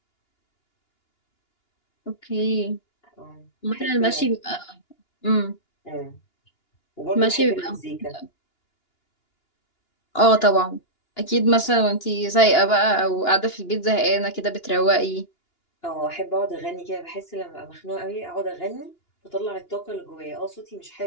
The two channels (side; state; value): right; late; 2.9 ms